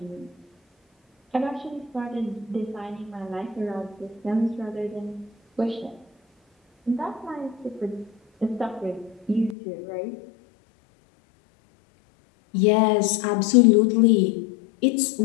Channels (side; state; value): right; drops out; at 9.6 s